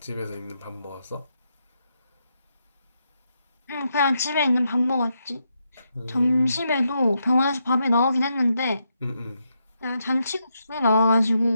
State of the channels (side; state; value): both; inverted; correlation -0.81